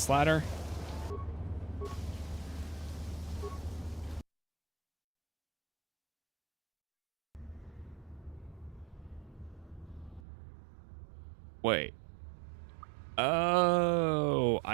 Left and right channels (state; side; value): drops out; left; at 10.2 s